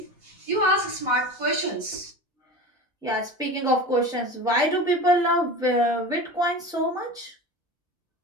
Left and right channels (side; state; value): both; normal; correlation 0.32